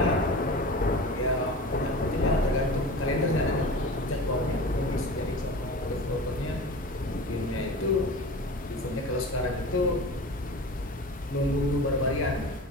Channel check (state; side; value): normal; both; correlation 0.34